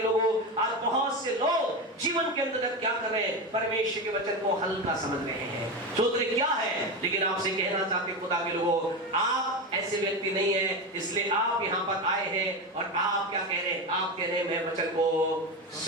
लोगों, आज बहुत से लोग जीवन के अंदर क्या कर रहे हैं, परमेश्वर के वचन को हल्का समझ रहे हैं, सोच रहे क्या है, लेकिन आपसे कहना चाहते खुदा के लोगों, आप ऐसे व्यक्ति नहीं है, इसलिए आप यहाँ पर आए हैं और आप क्या कह रहे हैं? आप कह रहे हैं मैं वचन को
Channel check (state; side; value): normal; both; correlation 0.18